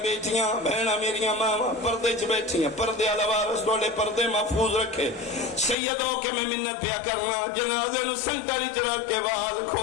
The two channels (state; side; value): drops out; right; at 5.8 s